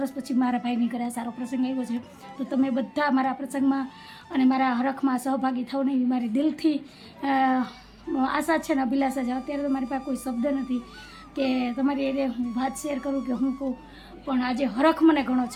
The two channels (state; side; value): identical; both; correlation 1.00